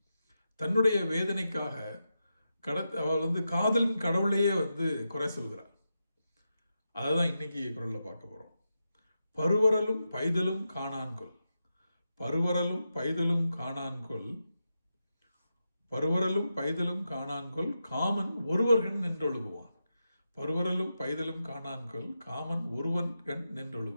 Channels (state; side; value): inverted; both; correlation -0.88